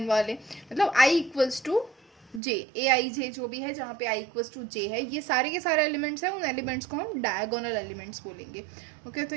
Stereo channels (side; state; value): left; drops out; at 2.4 s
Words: वाले, मतलब i इक्वल्स टू j, ए आई जे जो भी है जहाँ पे i इक्वल्स टू j है, ये सारे के सारे एलिमेंट्स हैं, उन एलिमेंट्स को हम डायगोनल एलिमेंट्स बोलेंगे, ओके। तो